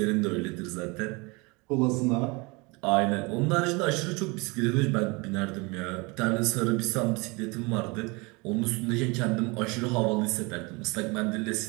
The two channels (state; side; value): quieter; left; 27.2 dB